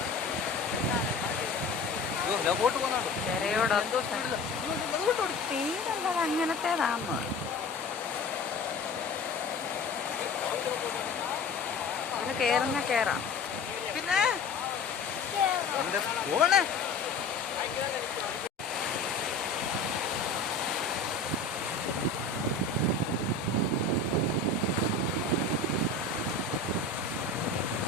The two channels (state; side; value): quieter; right; 3.6 dB